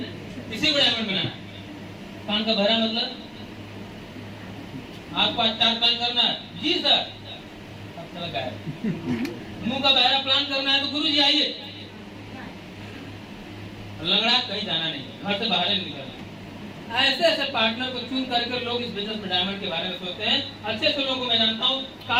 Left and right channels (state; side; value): identical; both; correlation 1.00